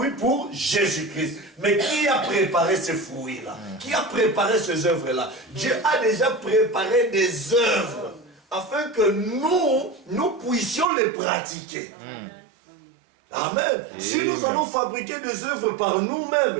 pour Jésus-Christ. Mais qui a préparé ces fruits-là? Qui a préparé ces œuvres-là? Dieu a déjà préparé des œuvres afin que nous puissions les pratiquer. Amen. Si nous allons fabriquer des œuvres par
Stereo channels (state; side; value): drops out; left; at 10.9 s